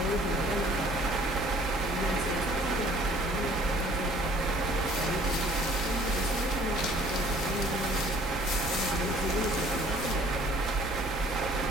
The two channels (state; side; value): normal; both; correlation 0.55